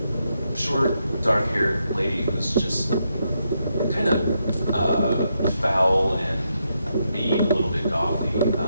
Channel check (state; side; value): inverted; both; correlation -0.82